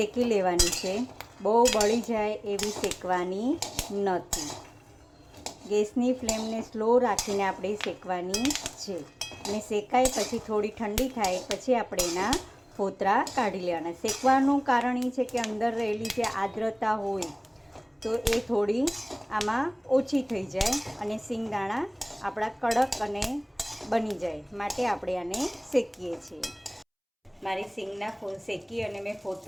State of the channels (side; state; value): both; identical; correlation 1.00